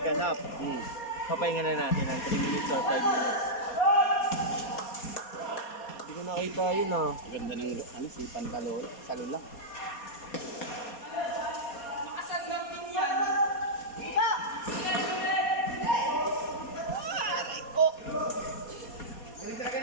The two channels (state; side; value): late; right; 4.2 ms